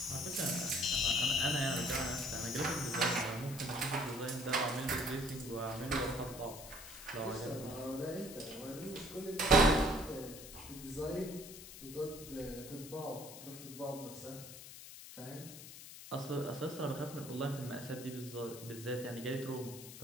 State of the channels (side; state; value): left; noise; hiss, 13 dB below the sound